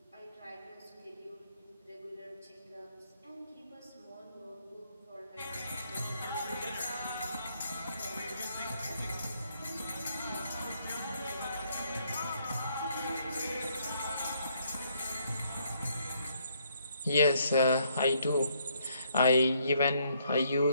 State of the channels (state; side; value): inverted; both; correlation -0.70